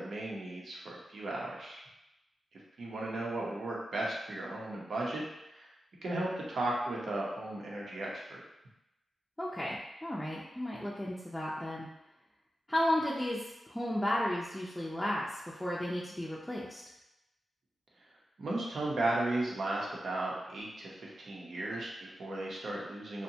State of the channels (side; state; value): both; normal; correlation 0.91